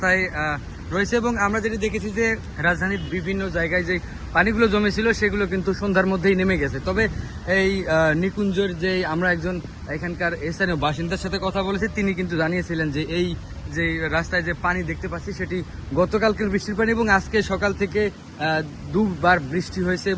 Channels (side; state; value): both; identical; correlation 1.00